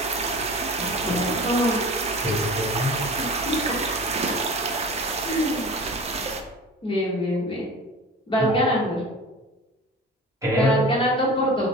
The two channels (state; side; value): normal; both; correlation 0.37